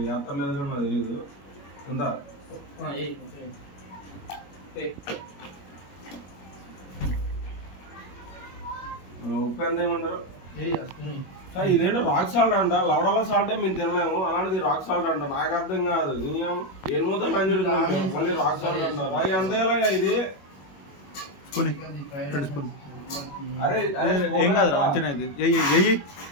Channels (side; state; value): right; late; 21 ms